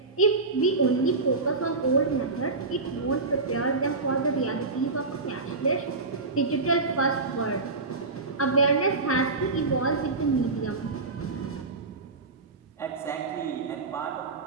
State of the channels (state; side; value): quieter; left; 3.7 dB